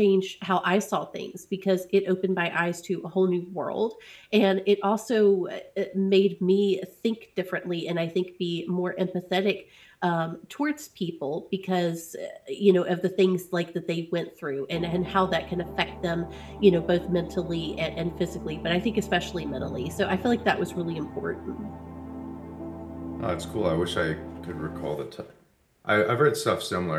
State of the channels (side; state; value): both; identical; correlation 1.00